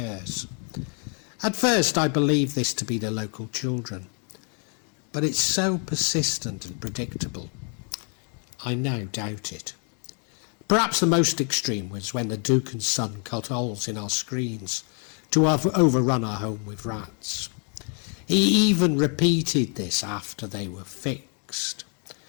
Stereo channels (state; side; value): quieter; right; 39.7 dB